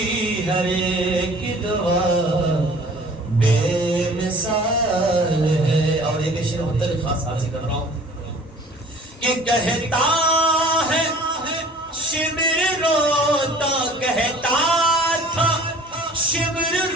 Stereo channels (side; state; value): both; normal; correlation 0.49